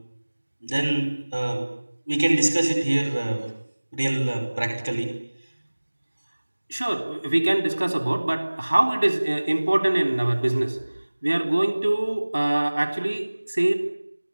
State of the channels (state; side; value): inverted; both; correlation -1.00